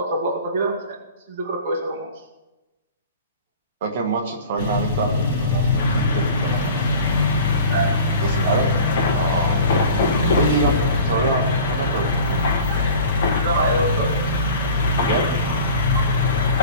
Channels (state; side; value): inverted; both; correlation -0.42